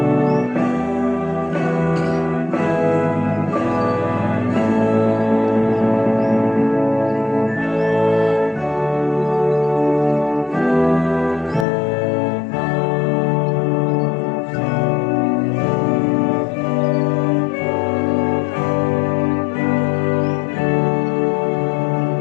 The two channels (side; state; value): right; drops out; at 11.7 s